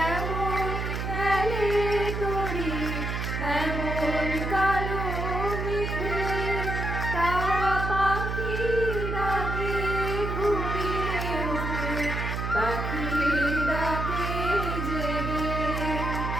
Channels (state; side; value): noise; right; hum, 3 dB below the sound